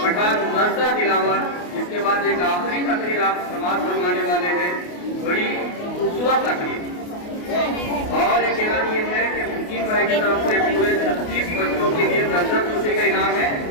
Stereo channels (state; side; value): late; right; 28 ms